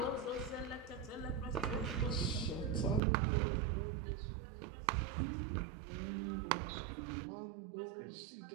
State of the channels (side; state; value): left; drops out; at 3.0 s